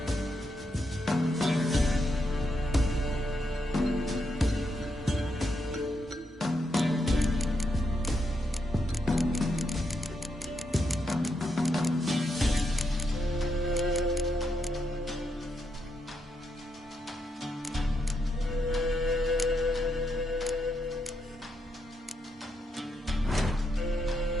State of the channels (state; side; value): normal; both; correlation 0.81